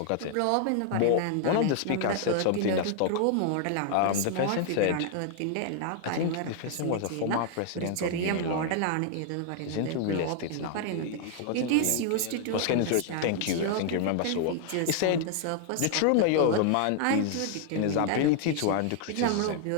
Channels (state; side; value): different; both; correlation 0.00